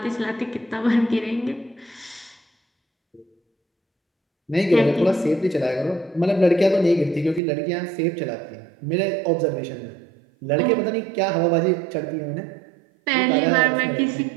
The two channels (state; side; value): drops out; left; at 7.4 s